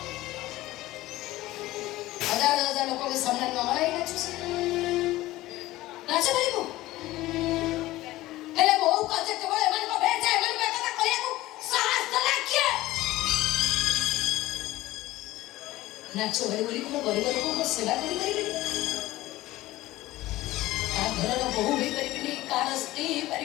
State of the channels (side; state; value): right; quieter; 17.2 dB